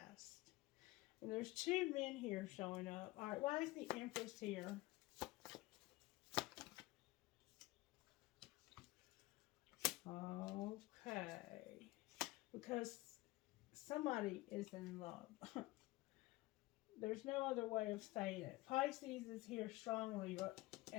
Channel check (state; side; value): quieter; right; 19.8 dB